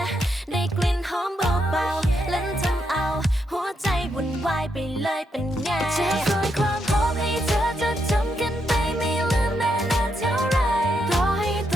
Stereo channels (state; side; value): normal; both; correlation 0.80